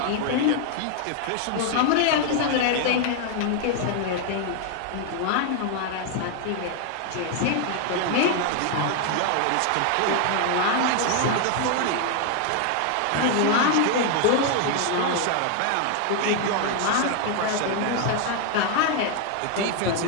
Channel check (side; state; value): both; different; correlation 0.00